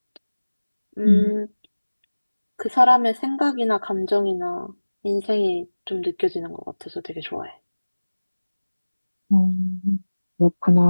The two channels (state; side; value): inverted; both; correlation -1.00